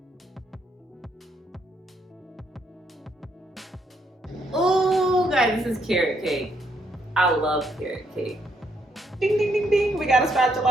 Oh, guys, this is carrot cake. I love carrot cake. Ding, ding, ding, ding. We got a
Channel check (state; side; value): normal; both; correlation 0.74